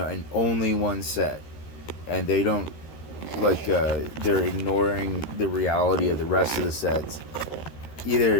only one set, and they don't, like, they're ignoring the reality of the rest of the sets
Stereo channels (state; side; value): late; right; 13 ms